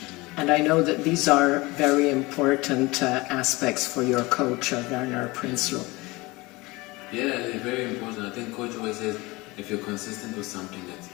And I know that these are very important aspects for your coach, Werner Prinsloo. Yeah, they're very important. I think coach always says, if you're consistent with something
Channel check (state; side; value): quieter; right; 22.8 dB